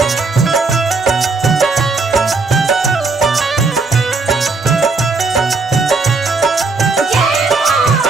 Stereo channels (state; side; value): quieter; left; 4.0 dB